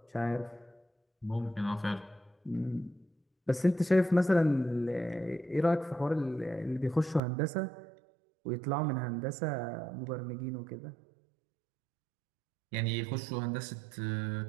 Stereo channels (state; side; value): drops out; left; at 7.2 s